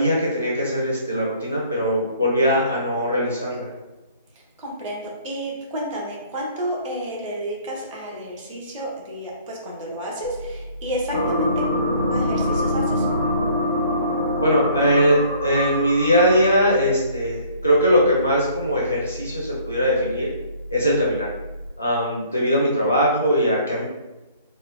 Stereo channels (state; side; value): inverted; both; correlation -0.57